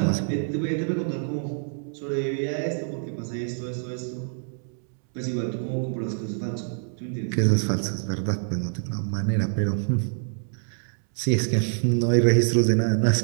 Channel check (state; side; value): silent; left; 61 dB below the other